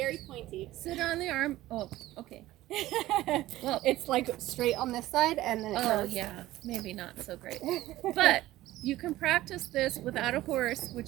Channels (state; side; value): quieter; left; 16.0 dB